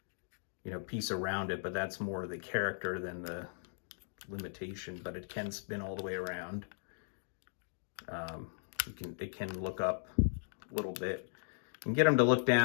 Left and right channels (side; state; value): right; silent; digital silence